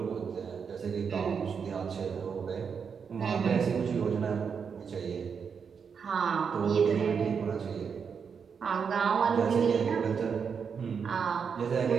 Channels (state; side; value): quieter; left; 6.4 dB